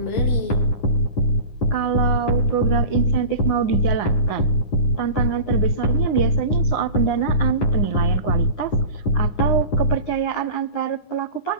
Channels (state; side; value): late; right; 9.7 ms